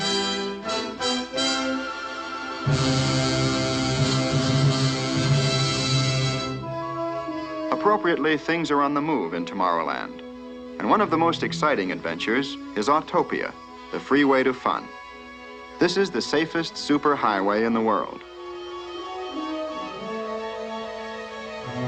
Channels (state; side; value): identical; both; correlation 1.00